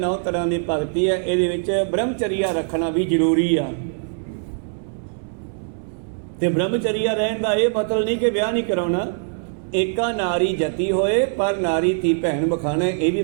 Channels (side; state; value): left; silent; 63 dB below the other